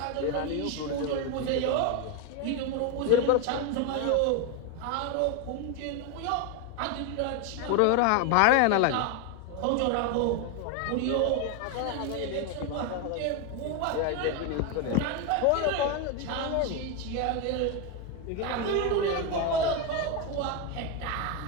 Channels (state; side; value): different; both; correlation 0.02